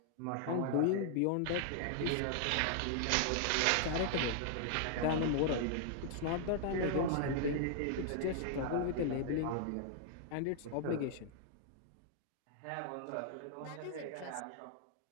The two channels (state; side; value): different; both; correlation 0.00